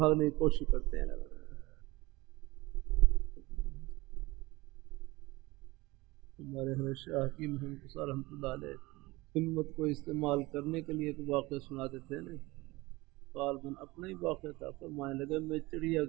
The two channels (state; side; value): quieter; left; 21.5 dB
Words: کی کوشش کرتے ہیں۔ ہمارے حضرت شاہ حکیم محمد رحمۃ اللہ علیہ ہمت کو استعمال کرنے کے لیے ایک واقعہ سناتے تھے نا، غالباً اپنا ہی واقعہ تھا، فرمانے لگے میں چڑیا